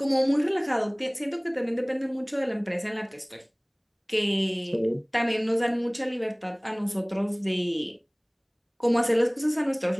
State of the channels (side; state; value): both; identical; correlation 1.00